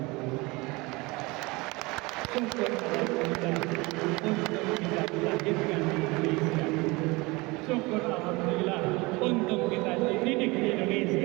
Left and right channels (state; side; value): quieter; left; 24.3 dB